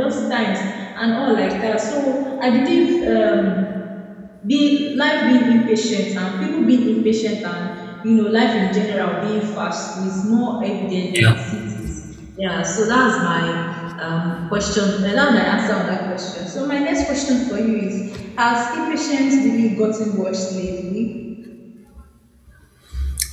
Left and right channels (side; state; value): both; identical; correlation 1.00